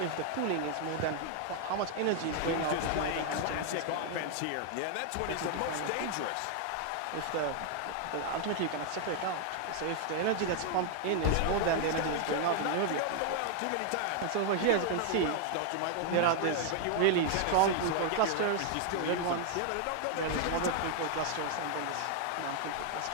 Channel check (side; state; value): both; different; correlation 0.00